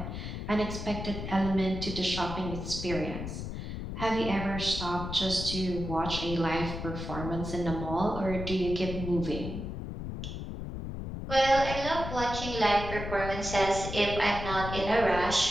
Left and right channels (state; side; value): noise; left; rumble, 6 dB below the sound